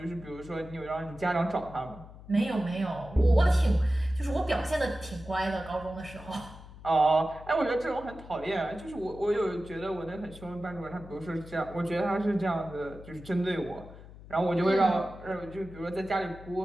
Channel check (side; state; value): left; noise; hum, 17 dB below the sound